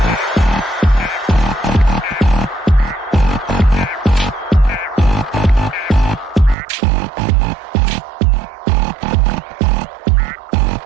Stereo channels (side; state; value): left; drops out; at 6.6 s